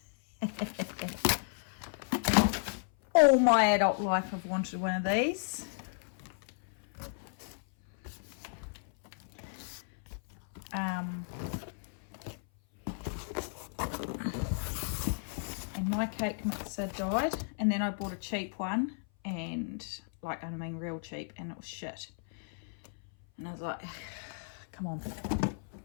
All my adult life I've wanted one of these. And my cake mixer died, and then I bought a cheap one, and real cheap, and it was shit. And I was like, come on,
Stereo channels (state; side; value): silent; right; 55 dB below the other